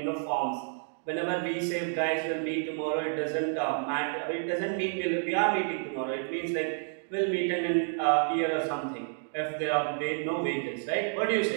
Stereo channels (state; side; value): silent; left; digital silence